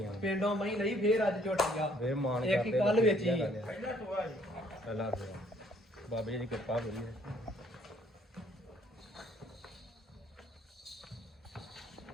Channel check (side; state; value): both; normal; correlation 0.63